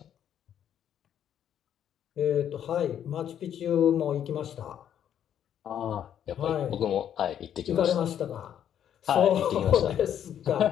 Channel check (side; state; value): right; quieter; 9.7 dB